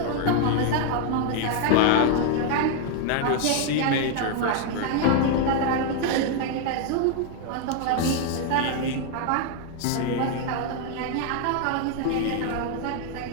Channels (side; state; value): both; different; correlation 0.00